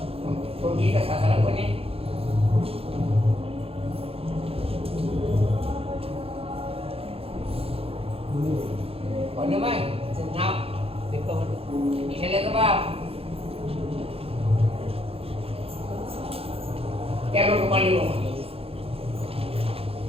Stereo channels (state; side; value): late; left; 0.28 ms